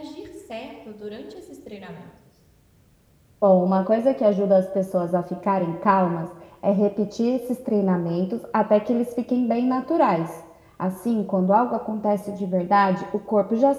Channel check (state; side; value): identical; both; correlation 1.00